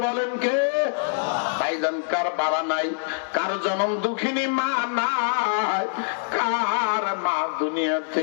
বলেন কে? ভাইজান, কার বাবা নাই, কার জনম দুঃখিনী মা নাই, কার মা দুনিয়া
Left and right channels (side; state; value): right; silent; 62 dB below the other